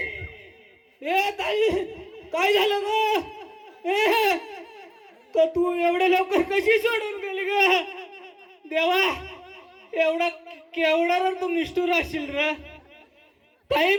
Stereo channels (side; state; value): both; identical; correlation 1.00